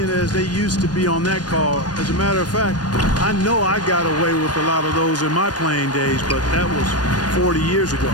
as they used to be on that call. As a matter of fact, I know I got away with a lot of those in my playing days, but that was 40 years ago.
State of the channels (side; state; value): right; late; 0.69 ms